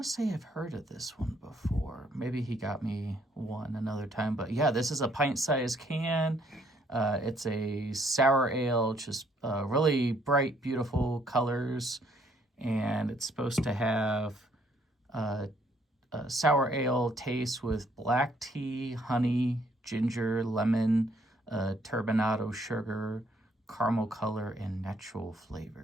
to say I've heard of this one before. Maybe he got me one another time. But yeah, this is a pint-sized can. It's a sour ale, just really bright, beautiful colors. And it's supposed to have a sour ale taste with black tea, honey, ginger, lemon, turbinado sugar, caramel color, and natural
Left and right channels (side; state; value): both; normal; correlation 0.67